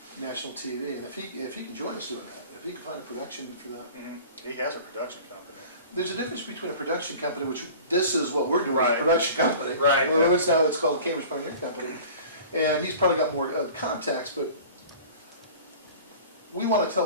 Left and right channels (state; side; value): inverted; both; correlation -0.42